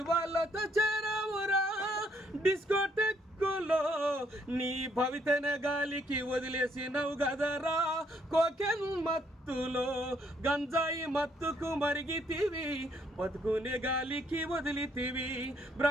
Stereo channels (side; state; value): both; normal; correlation 0.69